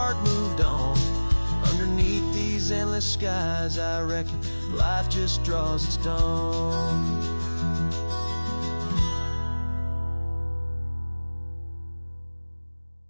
moved on. Underneath these endless skies, I reckon life just draws its dawn.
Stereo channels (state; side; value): inverted; both; correlation -1.00